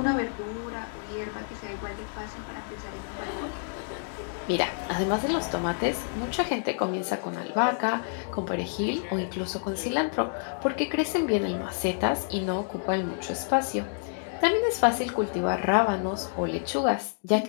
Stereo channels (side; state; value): right; silent; digital silence